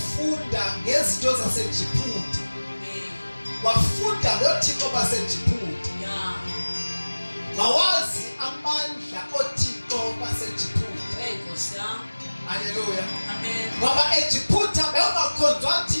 ngezinto zaseJiphuta. Amen. Wafunda ngoThixo baseJiphuta. Yeah. Wawazi amandla oThixo baseJiphuta. Hey, Kosia. Haleluya. Amen. Ngoba eJiphuta bekungakhonzwa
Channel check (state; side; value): inverted; both; correlation -1.00